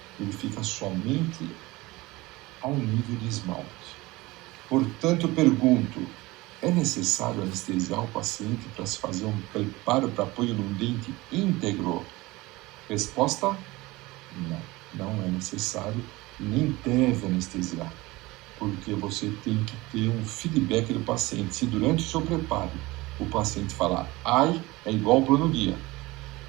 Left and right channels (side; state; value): left; quieter; 20.9 dB